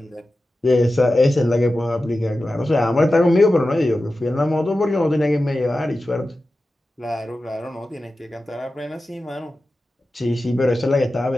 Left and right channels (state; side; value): normal; both; correlation 0.93